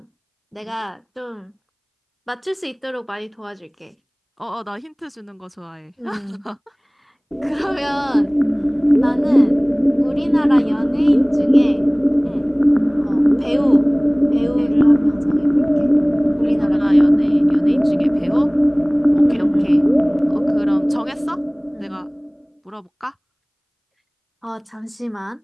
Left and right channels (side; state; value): both; identical; correlation 1.00